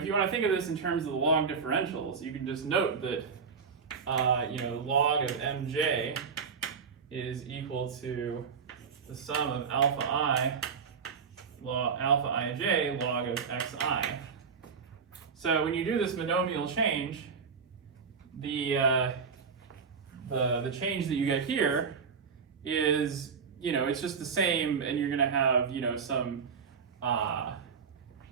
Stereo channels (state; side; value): quieter; left; 5.9 dB